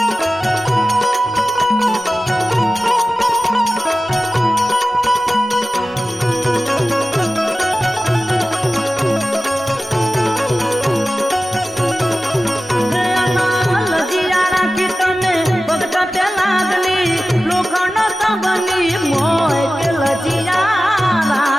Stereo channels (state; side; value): normal; both; correlation 0.95